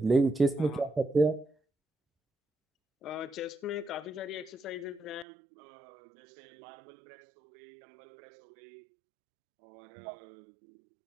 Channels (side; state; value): left; drops out; at 5.2 s